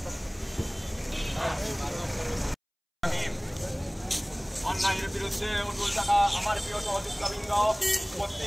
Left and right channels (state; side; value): identical; both; correlation 1.00